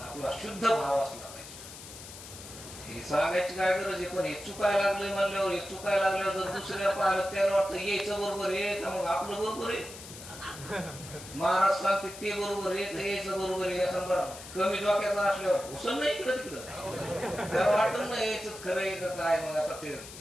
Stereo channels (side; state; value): left; noise; hiss, 14 dB below the sound